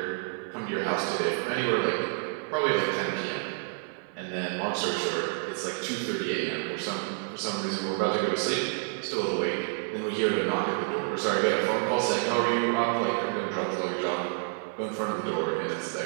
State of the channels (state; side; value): silent; left; 59 dB below the other